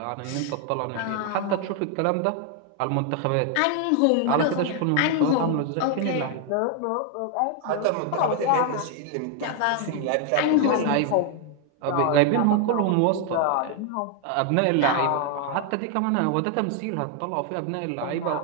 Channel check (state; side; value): different; both; correlation 0.00